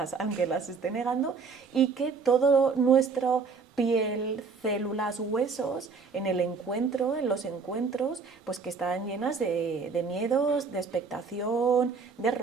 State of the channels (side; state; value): left; quieter; 5.0 dB